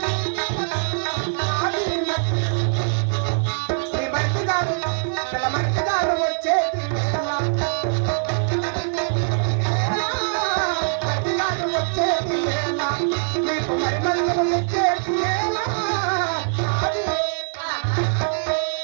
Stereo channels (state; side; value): silent; left; digital silence